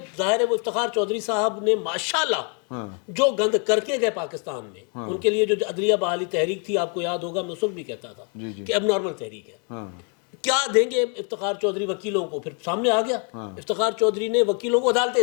ظاہر ہے وہ افتخار چودھری صاحب نے ماشاءاللہ جو گند کر کے گئے پاکستان میں, ان کے لیے جو عدلیہ بحالی تحریک تھی, آپ کو یاد ہوگا میں اس وقت بھی کہتا تھا کہ اب نارمل تحریک ہے. کیا دیں گے افتخار چودھری وکیلوں کو؟ پھر سامنے آ گیا افتخار چودھری نے وکیلوں کو عدالتیں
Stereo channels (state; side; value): quieter; right; 39.6 dB